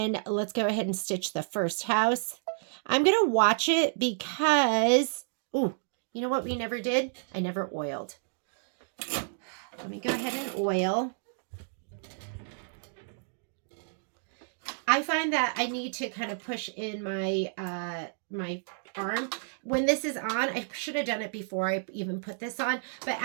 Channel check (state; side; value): silent; left; digital silence